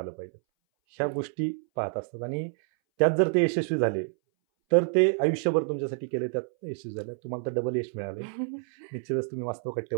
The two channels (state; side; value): silent; left; 59 dB below the other